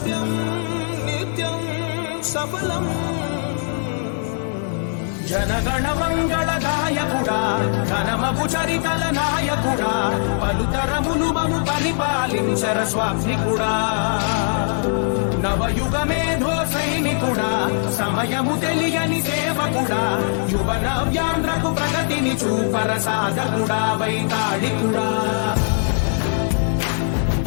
నిత్యం సఫలం. జనగణ మంగళ గాయకుడా, ఘనమగు చరితల నాయకుడా, పలుతరములు మము పరిపాలించర స్వామికుడా, నవయుగ మేధో సైనికుడా, సమయము తెలియని సేవకుడా, యువ నవ్యాంధ్రకు ప్రగతిని చూపర సాధకుడా, వైతాళికుడా.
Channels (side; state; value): right; silent; 64 dB below the other